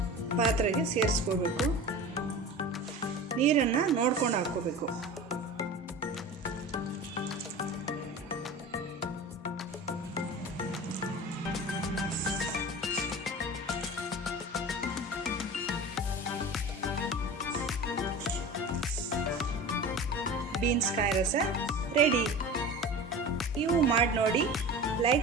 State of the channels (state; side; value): normal; both; correlation 0.34